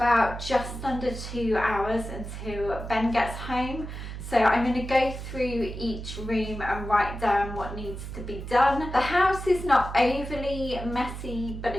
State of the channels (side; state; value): right; noise; hum, 8 dB below the sound